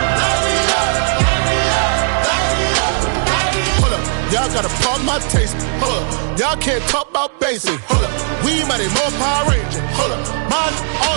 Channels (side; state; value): left; silent; digital silence